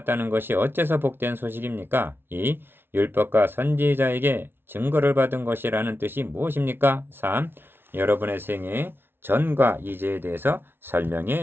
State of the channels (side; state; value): left; late; 0.11 ms